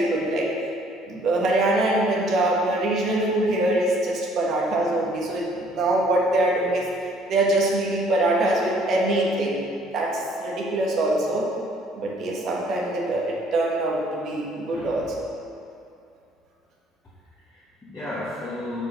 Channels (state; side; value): normal; both; correlation 0.60